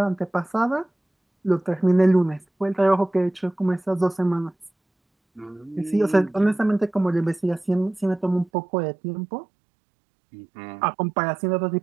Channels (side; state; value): left; drops out; at 8.5 s